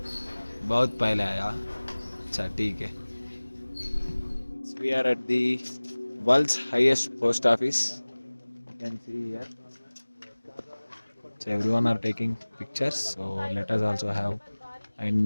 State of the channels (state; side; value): inverted; both; correlation -1.00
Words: बहुत पहले आया. अच्छा ठीक है. We are at the world's highest post office. You can see here. So everyone are taking pictures. So let us also have. And